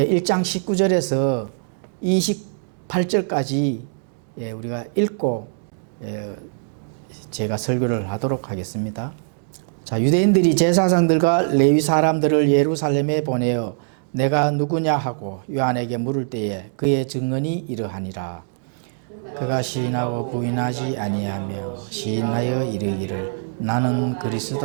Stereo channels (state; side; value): silent; left; digital silence